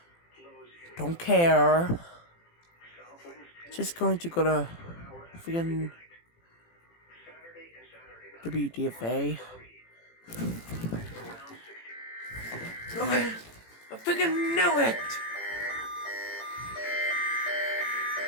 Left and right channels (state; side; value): late; right; 18 ms